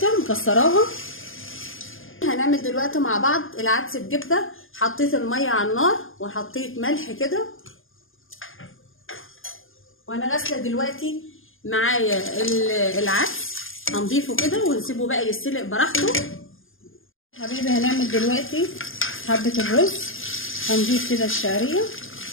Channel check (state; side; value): late; right; 0.59 ms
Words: مكسراها. هنعمل دلوقتي مع بعض العدس بجبه. حطيت الميه على النار وحطيت ملح كده، وانا غاسله دلوقتي معايا العدس. هنضيفه كده ونسيبه بقى يستلق براحته. حبيبي هنعمل دلوقتي حبه الرز. هنضيف كده الشعريه